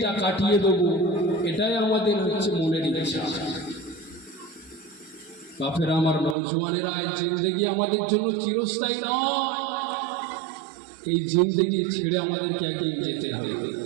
কাটিয়ে দেবো, এটাই আমাদের হচ্ছে মনের ইচ্ছা। বাপেরা আমার, নওজোয়ানেরা, এই জিন্দগি আমাদের জন্য চিরস্থায়ী নয়। এই জিন্দগি ছেড়ে আমাদেরকে একদিন যেতে হবে।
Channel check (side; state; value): left; drops out; at 6.4 s